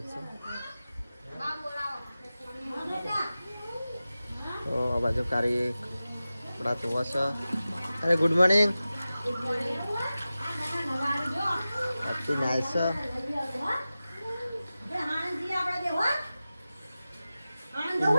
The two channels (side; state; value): both; inverted; correlation -0.95